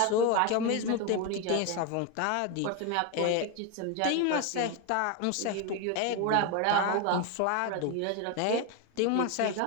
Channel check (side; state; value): both; different; correlation 0.02